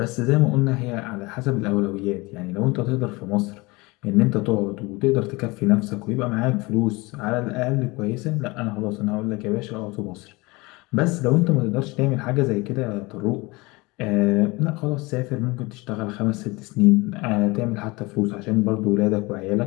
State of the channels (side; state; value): right; quieter; 23.9 dB